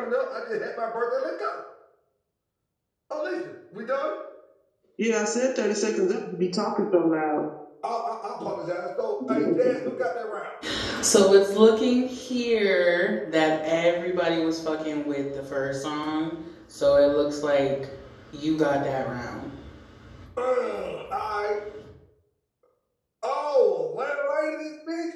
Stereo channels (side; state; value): both; identical; correlation 1.00